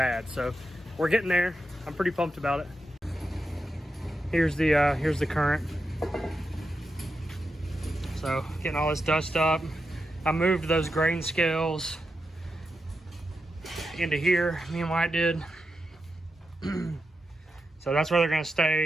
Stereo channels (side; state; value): both; normal; correlation 0.88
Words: So we're getting there. I'm pretty pumped about it. Here's the current. So getting all this dust up. I moved those grain scales into here, me and Wyatt did. So that's where they're gonna